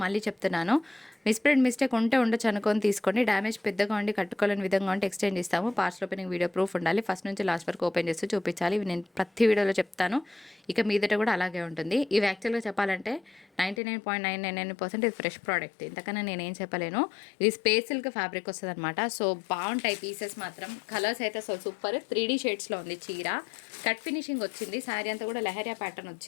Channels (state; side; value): drops out; right; at 13.8 s